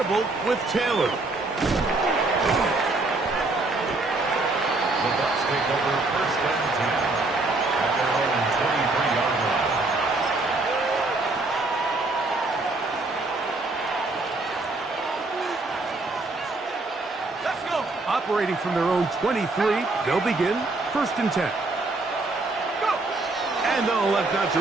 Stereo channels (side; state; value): left; quieter; 3.2 dB